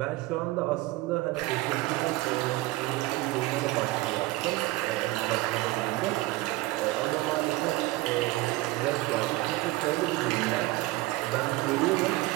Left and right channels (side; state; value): left; quieter; 19.0 dB